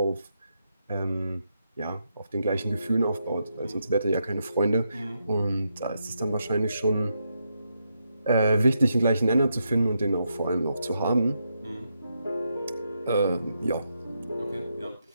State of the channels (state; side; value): inverted; both; correlation -0.82